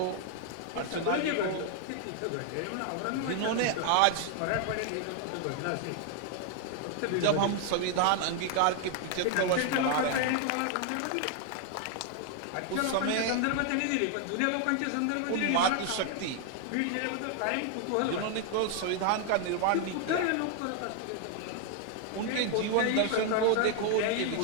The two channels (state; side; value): different; both; correlation 0.00